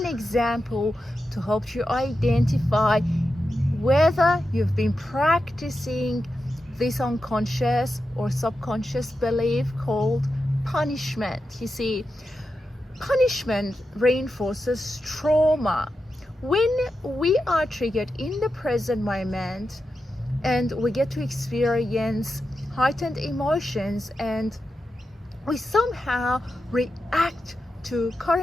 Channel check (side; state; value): both; normal; correlation 0.89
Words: an example to help you identify whether you've been practicing this unconscious or subconscious belief called punishment. You see, punishment reinforces trauma. When we are triggered in the present moment and we get to experience heightened emotions and we somehow react to